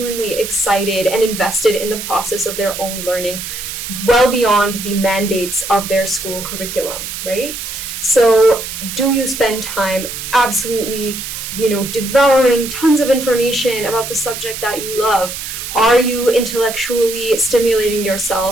excited and invested in the process of their own learning, well beyond the mandates of their school curriculum, right? So do you spend time absolutely, devouring tons of information about the subject that you love? Are you intellectually stimulating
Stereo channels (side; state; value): right; noise; hiss, 7 dB below the sound